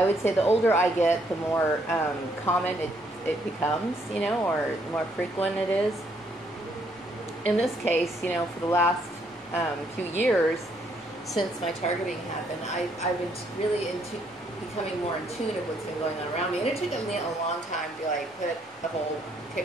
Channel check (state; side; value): normal; both; correlation 0.70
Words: would say the older I get, the more common it becomes, or the more frequent it is. In this case, for the last few years, since my targeting happened, I've been really becoming more in tune of what's been going on around me. And it took me a long time to put the whole